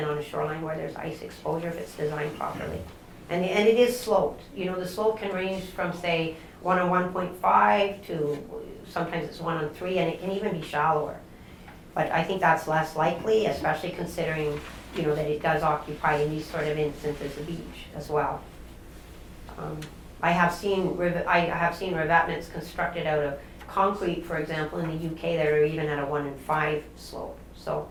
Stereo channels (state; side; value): identical; both; correlation 1.00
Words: on a shoreline where there's ice exposure if it's designed properly. And it is sloped. You know, the slope can range from, say, 1 on 1.5 to sometimes it's 1 on 3, and it can even be shallower. But I think that's less likely, especially considering, you know, that it does occupy in these sort of instances the beach as well. I have seen revetments constructed out of concrete, for example, in the UK that are even at a 1 in 5 slope. So